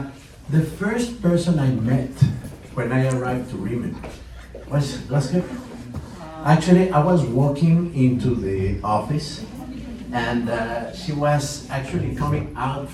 first person I met when I arrived to RIMAN was her. Actually, I was walking into the office, and she was actually coming out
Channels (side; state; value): both; identical; correlation 1.00